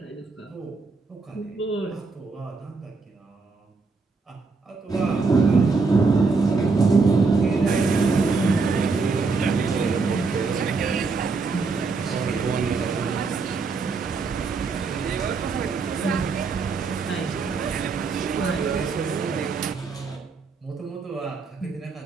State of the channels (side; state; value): left; quieter; 4.4 dB